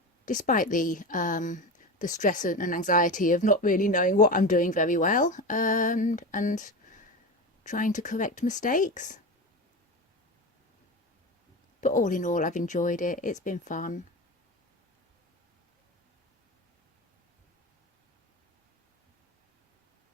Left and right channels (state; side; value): normal; both; correlation 0.24